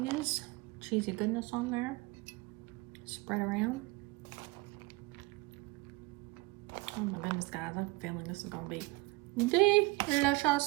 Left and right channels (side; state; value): left; quieter; 24.5 dB